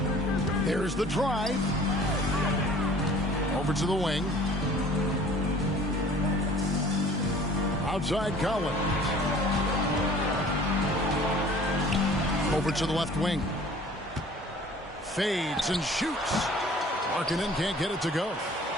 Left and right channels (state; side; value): normal; both; correlation 0.50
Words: There's the drive. Over to the wing. Outside Collins. Over to the left wing. Fades and shoots. Markkanen can't get it to go.